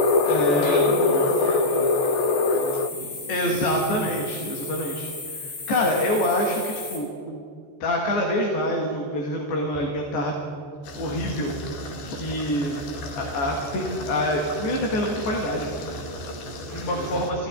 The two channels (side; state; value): right; late; 14 ms